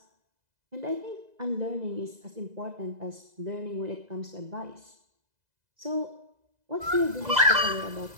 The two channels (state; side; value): late; left; 2.0 ms